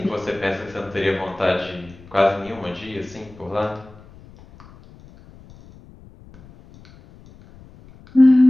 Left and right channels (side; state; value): left; noise; rumble, 23 dB below the sound